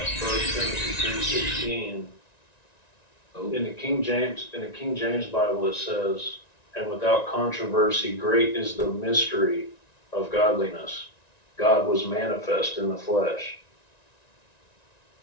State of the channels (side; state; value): right; late; 1.9 ms